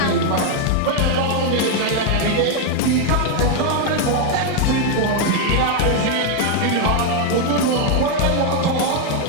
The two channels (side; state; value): both; different; correlation 0.01